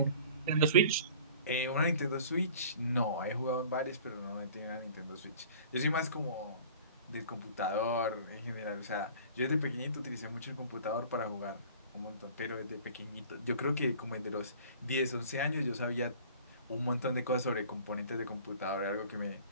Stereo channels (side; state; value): both; inverted; correlation -0.47